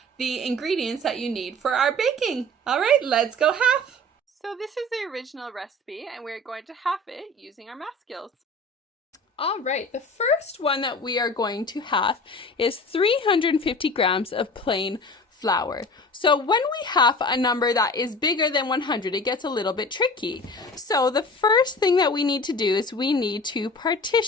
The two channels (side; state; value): both; normal; correlation 0.40